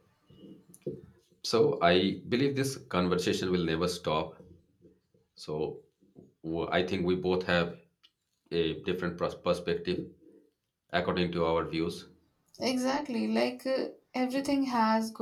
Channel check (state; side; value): identical; both; correlation 1.00